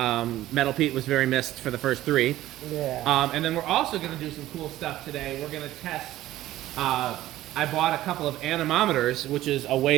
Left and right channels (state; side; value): quieter; left; 14.9 dB